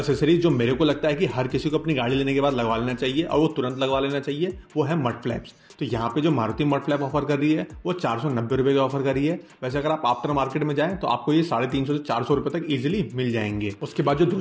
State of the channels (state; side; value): identical; both; correlation 1.00